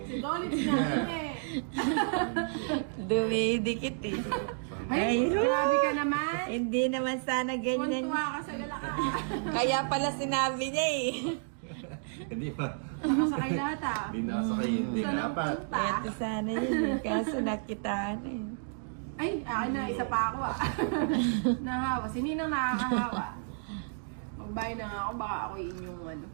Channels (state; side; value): silent; left; digital silence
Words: Si Dolly sinabi eh. Dumidikit eh. Ay, Ay, grabe ka naman. Hindi naman sana ganyan. Kuntuwa ka sa galakaan. Kaya pala sinabi niya eh. Hindi pa. Nakasakay lahat ah. Hindi nakasakay. Hindi Saan ang dapat. punta? Ito sana yun eh. Kaso nakitaan eh. Ay, akin na, isa pa ako ah. Nahawa. Sininang nakakahawa. Magbayad na nga ako, baka ako inyong ano.